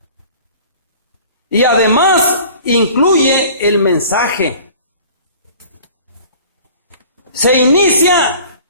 Y además incluye el mensaje. Se inicia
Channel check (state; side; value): inverted; both; correlation -0.46